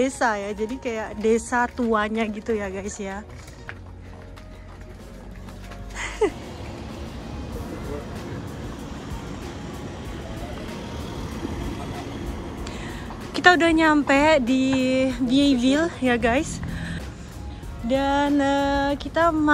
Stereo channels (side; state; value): both; identical; correlation 1.00